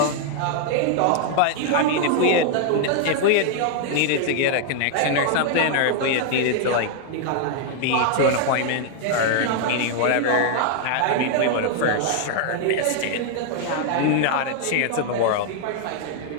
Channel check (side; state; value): both; different; correlation 0.00